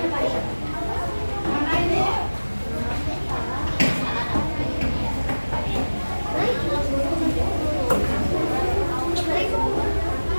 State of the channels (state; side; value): inverted; both; correlation -1.00